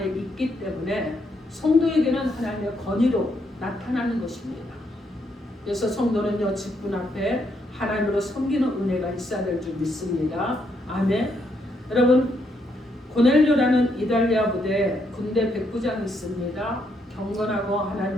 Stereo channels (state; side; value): normal; both; correlation 0.76